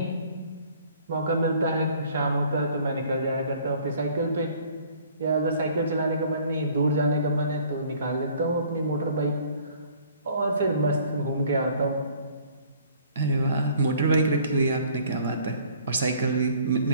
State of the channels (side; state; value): both; inverted; correlation -0.56